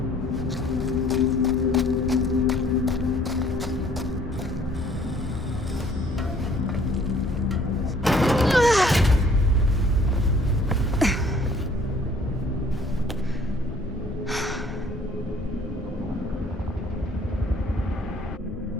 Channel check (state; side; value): normal; both; correlation 0.58